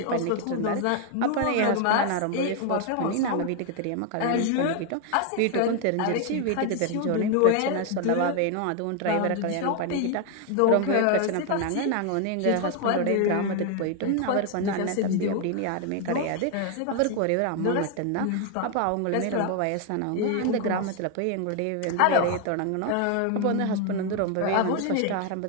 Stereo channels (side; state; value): both; different; correlation 0.01